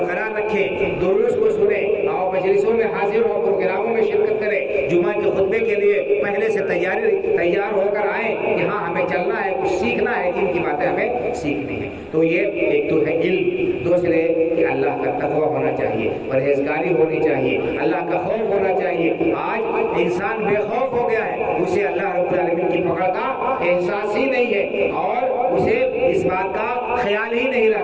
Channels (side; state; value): both; identical; correlation 1.00